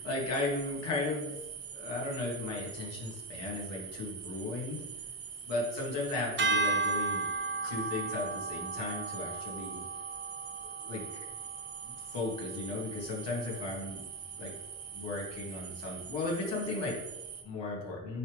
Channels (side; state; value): both; normal; correlation 0.06